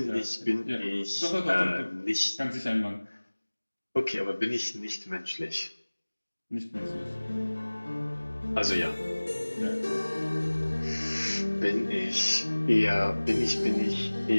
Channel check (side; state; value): both; inverted; correlation -1.00